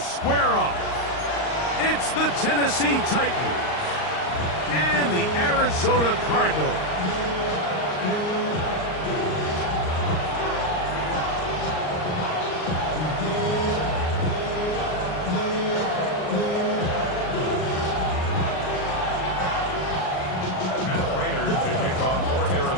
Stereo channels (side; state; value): right; late; 38 ms